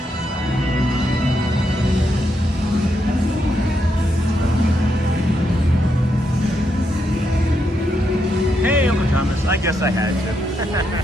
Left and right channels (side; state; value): both; normal; correlation 0.81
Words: Hey, Uncle Thomas. I guess I had to.